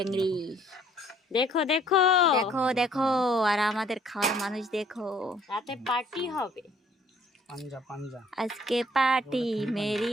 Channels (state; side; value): normal; both; correlation 0.60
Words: देखो देखो देखो देखो আর আমাদের খাওয়ার মানুষ দেখো রাতে পার্টি হবে পাঞ্জা পাঞ্জা আজকে পার্টি মেরি